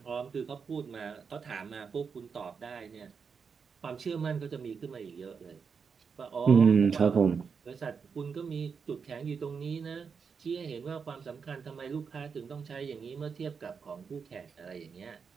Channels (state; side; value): quieter; left; 5.9 dB